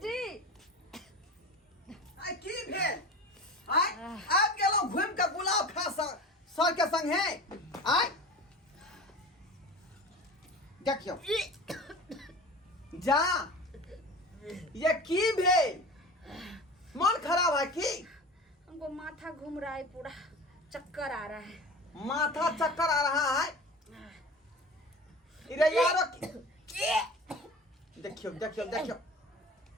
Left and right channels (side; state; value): both; normal; correlation 0.35